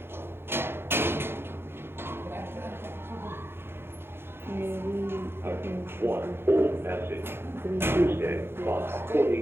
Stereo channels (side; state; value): left; late; 0.11 ms